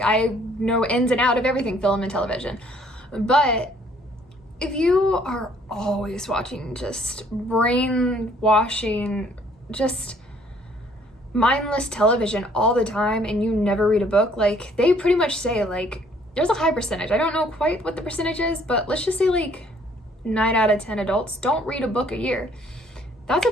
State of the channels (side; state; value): both; normal; correlation 0.61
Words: I know ins and out of everything film and television. But if you are always watching just brainwashing, just mindless television all the time and you never read a book, like they pretty much say like, there's a high percentage. I don't know quite what the percentage is, but let's just say like 9 out of 10 adults don't read a book a year. That's a